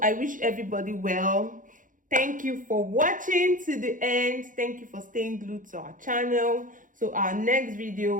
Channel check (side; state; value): left; late; 0.38 ms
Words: wish everybody well. Thank you for watching to the end. Thank you for staying glued to our channel. So our next